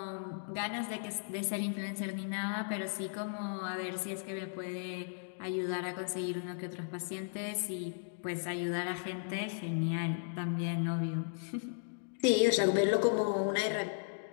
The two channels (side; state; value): right; silent; digital silence